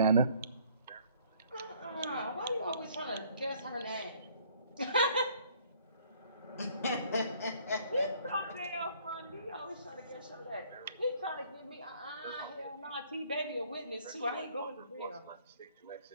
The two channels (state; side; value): inverted; both; correlation -0.60